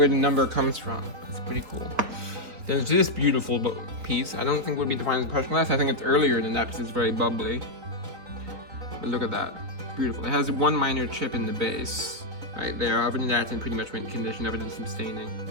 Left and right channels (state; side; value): late; left; 3.6 ms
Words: the number comes from. It's pretty cool. There's this beautiful piece. I don't think it would be defined as Prussian glass. I think it's earlier than that because it's very bubbly. But look at that. Beautiful. It has one minor chip in the base. Right there. Other than that, it's in pretty much mint condition. Other than some staining.